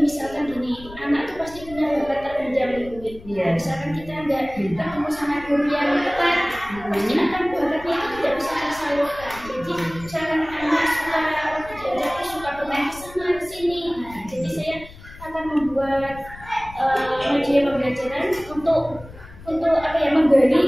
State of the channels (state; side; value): noise; left; rumble, 18 dB below the sound